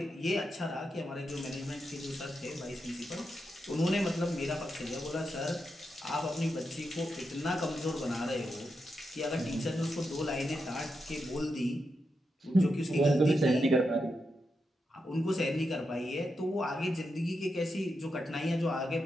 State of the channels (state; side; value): normal; both; correlation 0.86